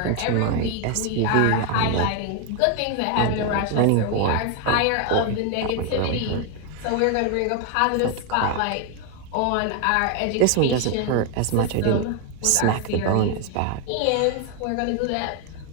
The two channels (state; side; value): different; both; correlation 0.01